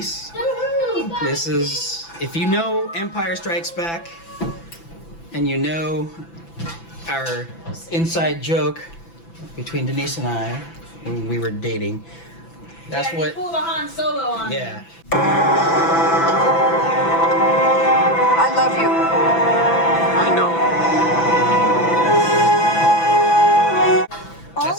This is, if you know Empire Strikes Back, and you know our inside joke between Denise and I when we were dating, that's yeah, what. You pulled a Han Solo on me. Yeah. I love you. I know.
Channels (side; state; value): right; late; 6.0 ms